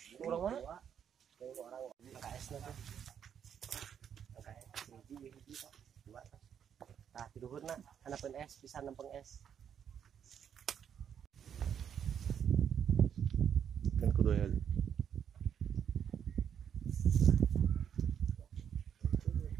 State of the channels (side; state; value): left; quieter; 8.4 dB